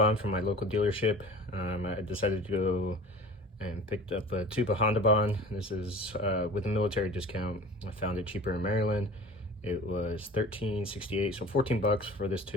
from my local dealership. I decided to go and picked up a tube of Honda Bond. This is with a military discount. I found it cheaper in Maryland. It was $13.68, so 14 bucks for this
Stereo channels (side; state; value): both; normal; correlation 0.40